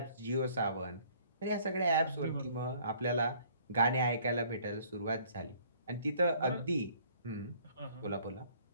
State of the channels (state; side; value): inverted; both; correlation -0.58